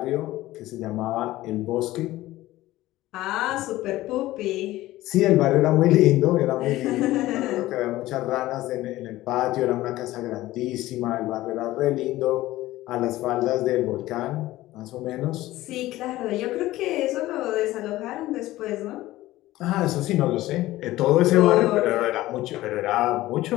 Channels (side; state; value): right; quieter; 16.6 dB